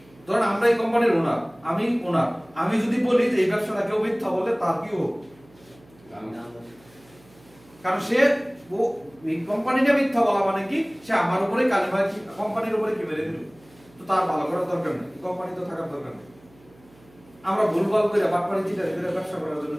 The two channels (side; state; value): right; noise; hum, 27 dB below the sound